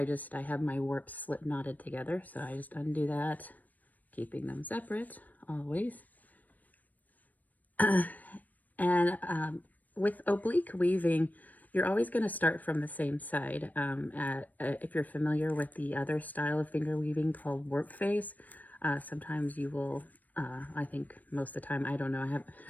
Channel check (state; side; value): late; right; 0.081 ms